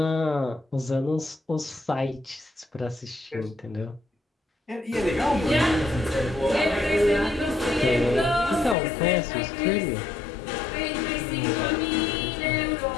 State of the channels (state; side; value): drops out; right; at 8.8 s